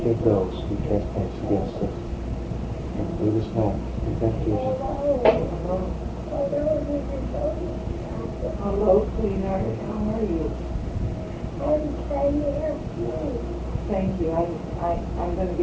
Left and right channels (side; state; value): both; identical; correlation 1.00